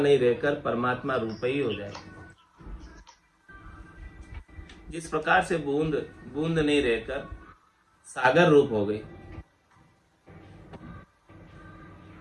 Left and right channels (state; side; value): identical; both; correlation 1.00